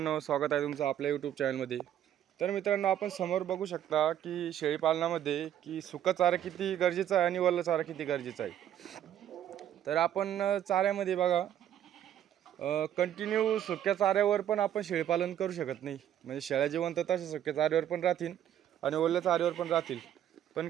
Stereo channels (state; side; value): quieter; left; 10.8 dB